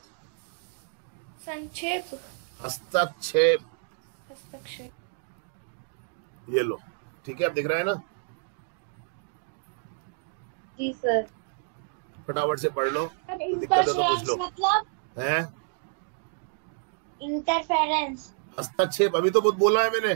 संक्षेप, हस्तक्षेप, हस्तक्षेप, ये लो, ठीक है, आप दिख रहा है ना? जी सर। फटाफट से पढ़ लो, दिक्कत है तो पूछ लो। मतलब हैं? इंटरफेरेंस, हस्तक्षेप, अभी तो बहुत बोला है मैंने।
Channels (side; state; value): left; silent; 59 dB below the other